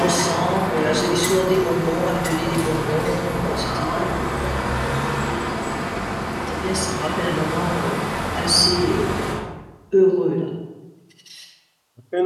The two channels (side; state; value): both; identical; correlation 1.00